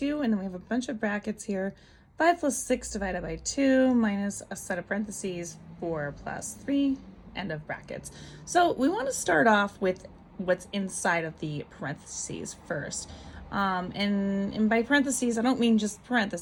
and then we have a bunch of brackets here. 5 plus 6 divided by 2 minus a set of parentheses, 4 plus 3, end of brackets. So we want to start off with what's inside of the parentheses first. And by parentheses, I don't mean just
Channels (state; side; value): identical; both; correlation 1.00